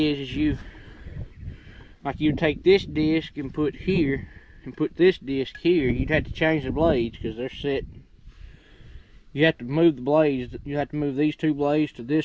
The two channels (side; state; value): both; identical; correlation 1.00